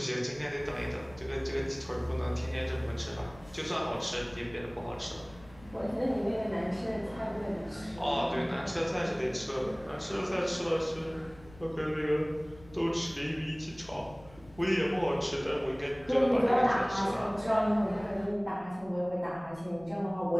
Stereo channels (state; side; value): noise; left; rumble, 22 dB below the sound